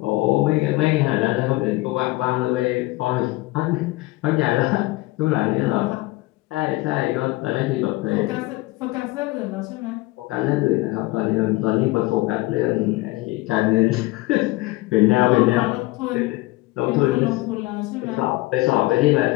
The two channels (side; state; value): right; quieter; 20.4 dB